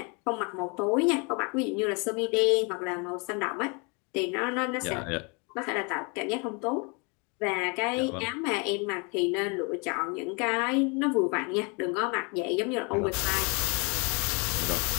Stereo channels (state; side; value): quieter; right; 32.1 dB